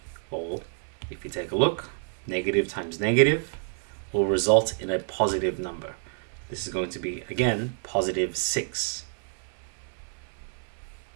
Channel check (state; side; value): silent; left; 57 dB below the other